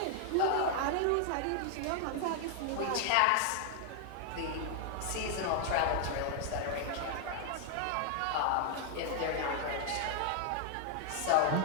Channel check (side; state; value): both; different; correlation 0.00